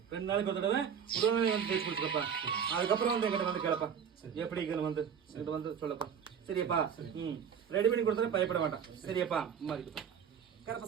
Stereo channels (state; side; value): quieter; left; 7.6 dB